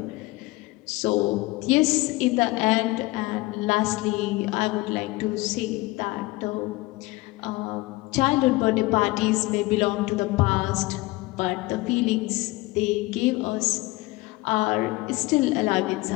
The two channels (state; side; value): quieter; right; 21.2 dB